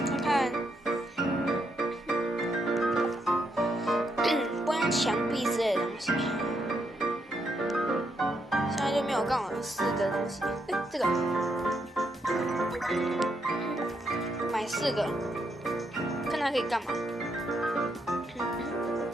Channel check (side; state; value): both; normal; correlation 0.78